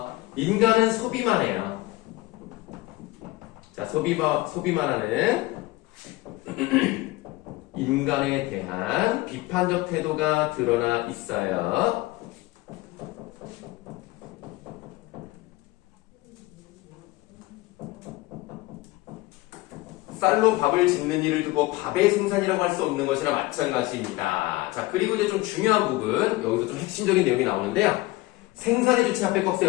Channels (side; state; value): right; quieter; 19.6 dB